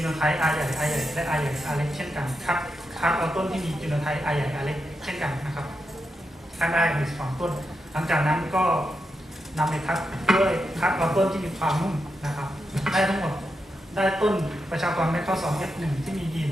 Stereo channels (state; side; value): normal; both; correlation 0.86